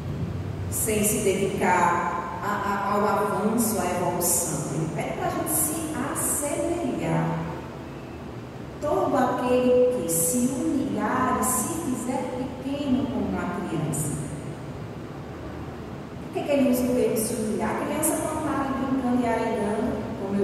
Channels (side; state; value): both; identical; correlation 1.00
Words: sem se dedicar ao avanço, à evolução. Ele pede para a gente se assemelhar. Todo aquele que se humilhar e se fizer pequeno como uma criança. Por que ele usa o termo se humilhar? A criança não está ali brincando e arengando, como